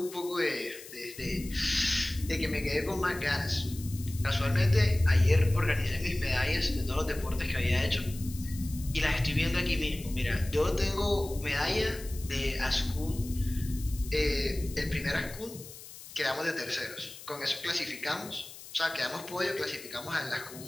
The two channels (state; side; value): noise; left; hiss, 15 dB below the sound